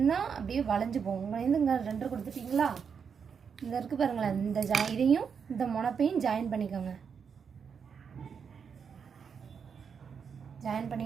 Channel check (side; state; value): left; quieter; 6.6 dB